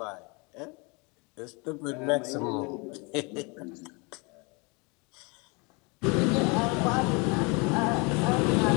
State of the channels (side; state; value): right; quieter; 29.7 dB